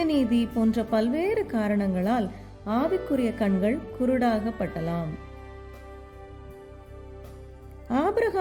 போன்ற பல்வேறு காரணங்களால் ஆவிக்குரிய கண்கள் குருடாகப்படலாம்.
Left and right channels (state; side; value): identical; both; correlation 1.00